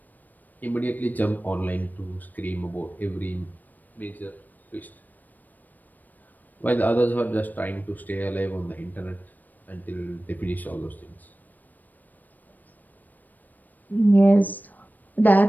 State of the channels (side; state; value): right; late; 0.086 ms